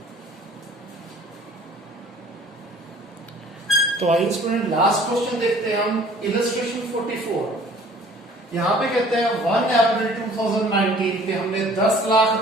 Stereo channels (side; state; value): both; normal; correlation 0.52